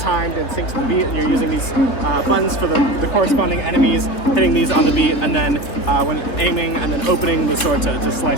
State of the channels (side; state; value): right; late; 3.8 ms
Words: and synced to the beat. And you're using these buttons for the corresponding enemies, hitting these on the beat, and then when aiming and then opening the sword to